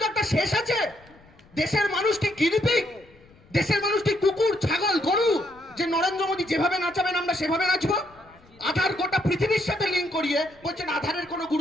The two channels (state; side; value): noise; left; rumble, 27 dB below the sound